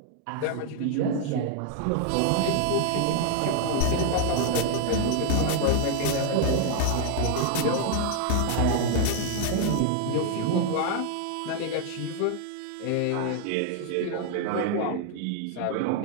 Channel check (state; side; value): different; both; correlation 0.00